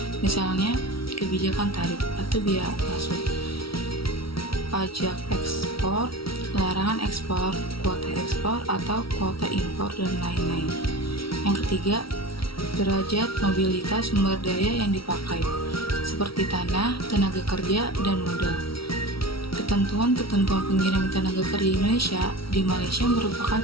Misalnya, kebijakan tarif atau biaya masuk, pajak ekspor, larangan ekspor, kuota ekspor atau kuota impor, dan lain-lain. Yang ketiga, derajat mobilitas sumber daya yang dipakai, seperti tanah, tenaga kerja, dan modal. Ketentuan-ketentuan pengiriman tenaga kerja Indonesia di Malaysia merupakan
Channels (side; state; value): right; late; 0.75 ms